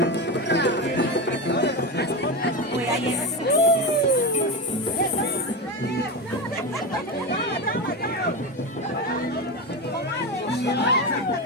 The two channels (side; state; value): both; normal; correlation 0.18